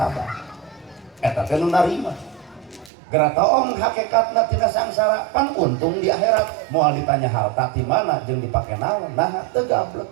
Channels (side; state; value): left; drops out; at 2.9 s